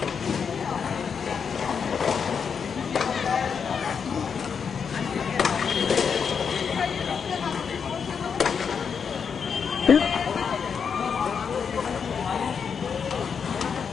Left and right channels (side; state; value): right; quieter; 6.5 dB